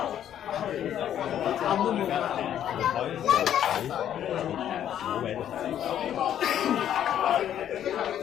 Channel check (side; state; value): right; quieter; 10.4 dB